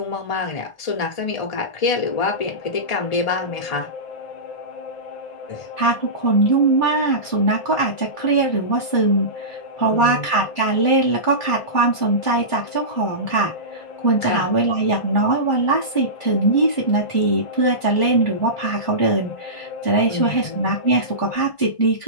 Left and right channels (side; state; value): right; late; 1.5 ms